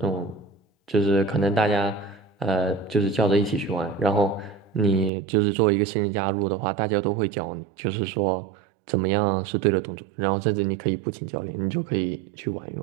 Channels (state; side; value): drops out; left; at 5.1 s